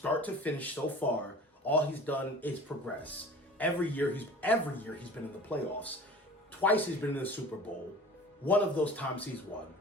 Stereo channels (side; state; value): both; normal; correlation 0.42